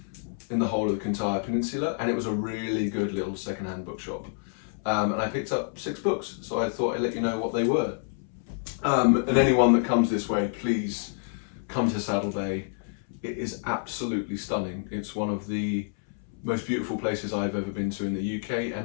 the whole of the Kintyre Peninsula, and it was a really good little second-hand bookshop. And I picked up 6 books, so I thought I'd let you know what they were. And anyone that comes this way, please come to Saddell Bay. It is absolutely stunning. It's one of the most beautiful places I've ever been to in the UK,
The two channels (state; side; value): silent; right; 59 dB below the other